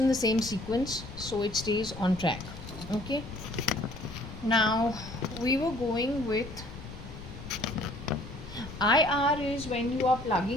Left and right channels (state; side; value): noise; left; rumble, 12 dB below the sound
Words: the same sequence, so it stays on track. Okay. Now we were going with IR is when you are